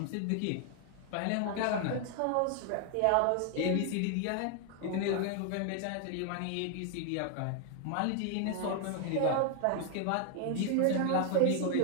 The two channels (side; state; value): both; different; correlation 0.00